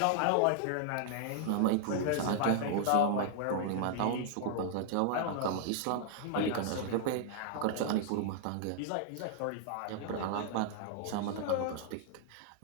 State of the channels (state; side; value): different; both; correlation -0.01